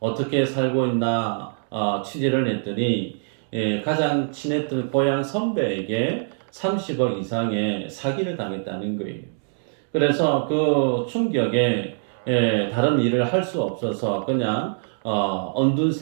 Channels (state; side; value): silent; left; digital silence